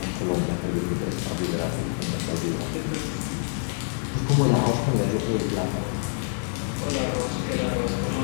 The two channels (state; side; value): silent; right; 61 dB below the other